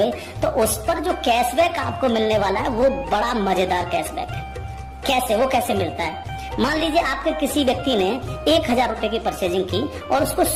तो उस पर जो कैशबैक आपको मिलने वाला है वो बड़ा मजेदार कैशबैक है। कैसे, वो कैसे मिलता है? मान लीजिए आपके किसी व्यक्ति ने 1000 रुपए की परचेजिंग की और उसको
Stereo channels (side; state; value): both; identical; correlation 1.00